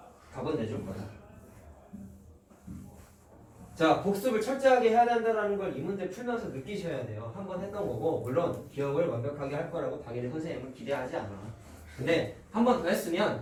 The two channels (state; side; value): identical; both; correlation 1.00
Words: 답은 내줄 거야. 자, 복습을 철저하게 해야 된다는 걸 이 문제 풀면서 느끼셔야 돼요. 한 번 했던 거고, 물론 기억을 완벽하게 할 거라고 당연히 선생님은 기대하지 않아. 근데 한 번 더